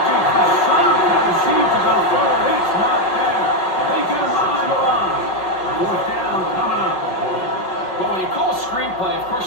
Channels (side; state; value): right; late; 5.5 ms